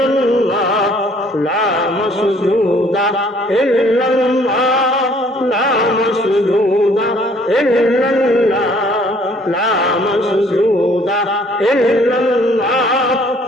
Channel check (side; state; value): both; normal; correlation 0.59